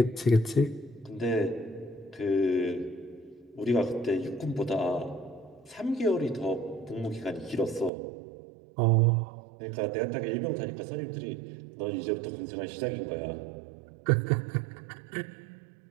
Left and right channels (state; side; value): drops out; left; at 7.9 s